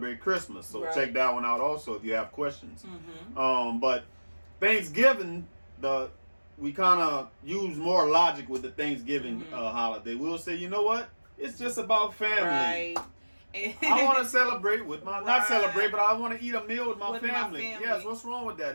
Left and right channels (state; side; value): inverted; both; correlation -1.00